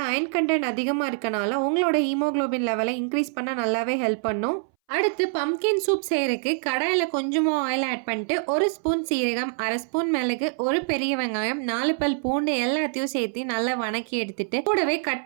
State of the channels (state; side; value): silent; left; 60 dB below the other